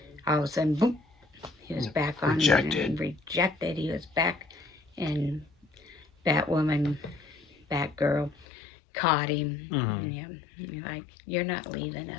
all of a sudden, boom, he was back on rejected. Rejected. He was back, and Batwoman, Batgirl, caught him. Yeah, like, you're not leaving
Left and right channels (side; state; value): right; drops out; at 8.5 s